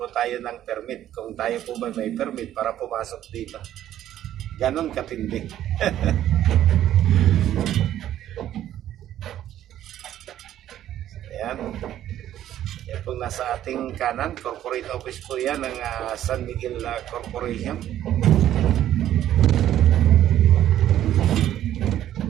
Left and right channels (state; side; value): quieter; left; 12.0 dB